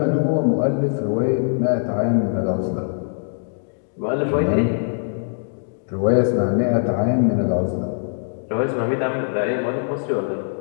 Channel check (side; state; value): right; silent; digital silence